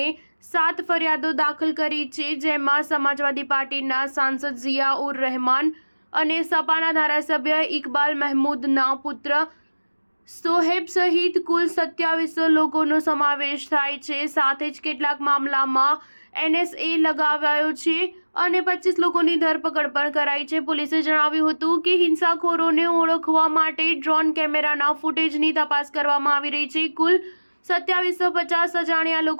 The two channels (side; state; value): both; inverted; correlation -1.00